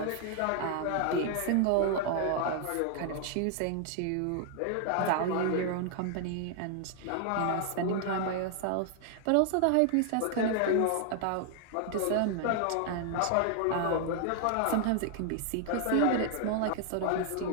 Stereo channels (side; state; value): both; different; correlation 0.00